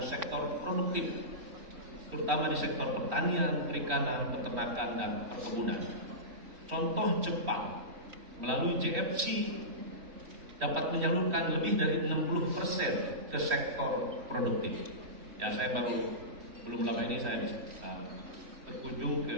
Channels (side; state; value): left; late; 3.8 ms